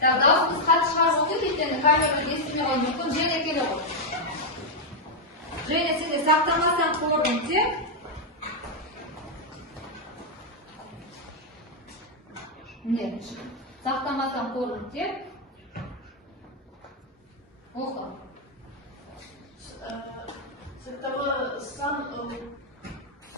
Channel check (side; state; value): both; normal; correlation -0.01